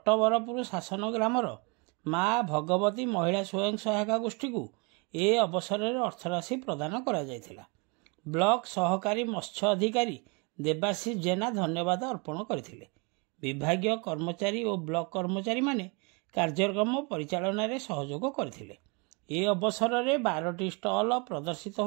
शासन ग्रामर माँ भगवती महिला स्वयं सहायिका गोष्ठी को ए अवसर में अर्थराशि प्रदान करा जायथिला। ब्लॉक सहकारी मत्स्य अधिकारी देवाशीष जेना धन्यवाद अर्पण करथिले। विभागीय कर्मचारी और ब्लॉक कर्मचारी माने कार्यक्रम परिचालन में सहयोग करथिले। ए अवसर में 12टी स्टल प्रदर्शित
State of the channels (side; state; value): left; quieter; 31.1 dB